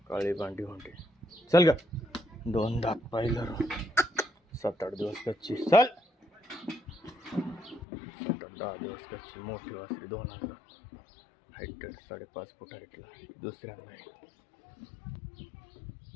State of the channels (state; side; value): drops out; right; at 7.9 s